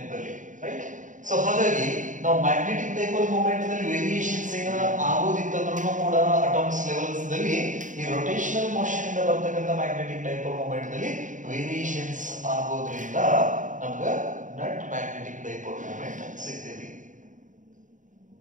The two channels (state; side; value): late; left; 0.37 ms